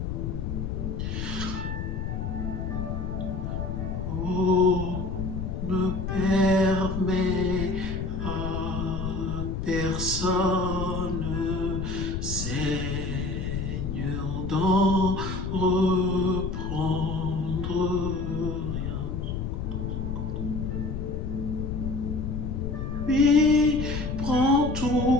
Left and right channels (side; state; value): left; noise; rumble, 3 dB below the sound